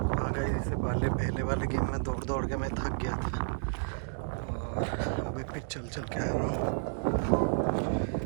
आ गए इससे पहले वाले गेम में दौड़ के मैं थक गया था और अभी फिर चल के आ रहा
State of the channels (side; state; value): left; silent; digital silence